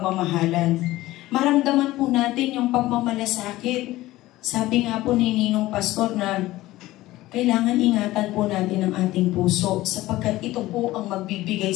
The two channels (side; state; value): right; quieter; 17.1 dB